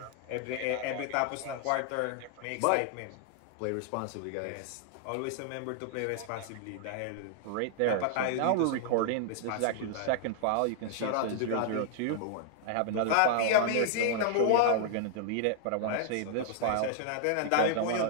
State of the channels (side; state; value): both; different; correlation 0.00